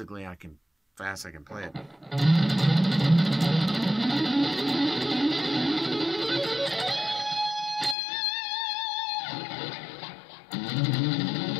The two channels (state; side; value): drops out; right; at 8.0 s